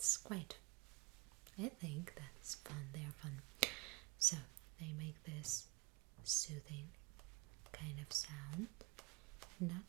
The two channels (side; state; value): left; quieter; 25.1 dB